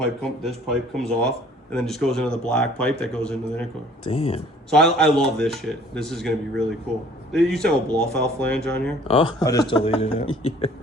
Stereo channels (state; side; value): normal; both; correlation 0.54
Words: this pipe comes off and then just goes into the black pipe that goes into the intercooler. Damn. So I love this shit. This is going to be really cool. They used to have a blow-off flange on here. Oh. I just deleted it. Yeah.